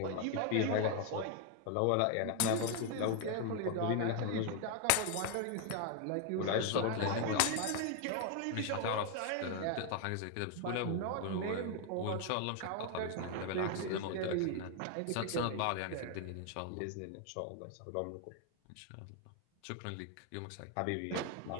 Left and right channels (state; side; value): different; both; correlation 0.00